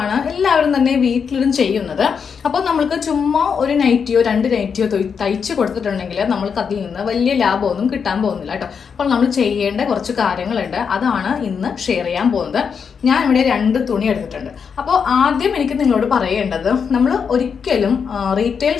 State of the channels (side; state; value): right; quieter; 6.4 dB